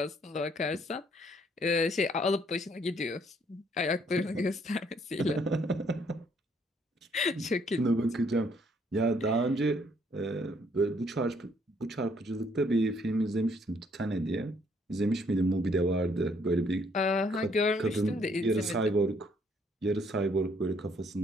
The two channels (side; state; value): both; normal; correlation 0.67